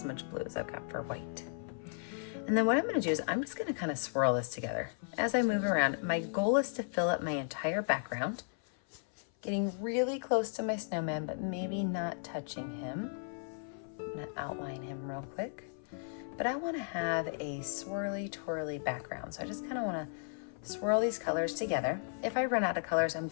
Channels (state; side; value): silent; right; 54 dB below the other